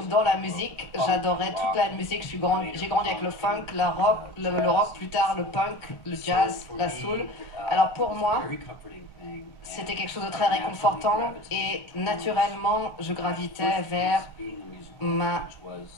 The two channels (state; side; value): late; right; 1.4 ms